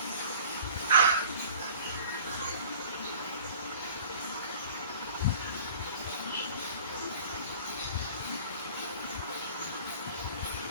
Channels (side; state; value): both; inverted; correlation -0.46